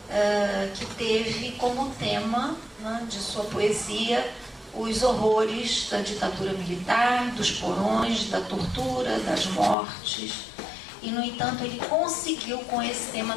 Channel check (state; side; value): drops out; right; at 9.8 s